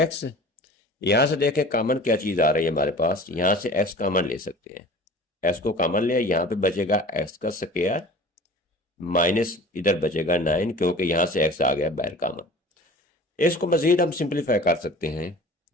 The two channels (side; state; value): both; normal; correlation 0.42